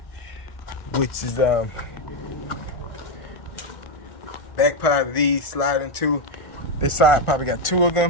which is back part of these slide into. This side probably got 2 of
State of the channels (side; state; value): right; late; 1.5 ms